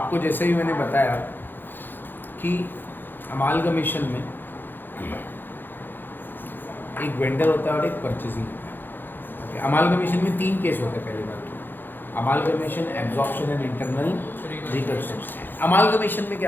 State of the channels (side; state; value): right; late; 0.094 ms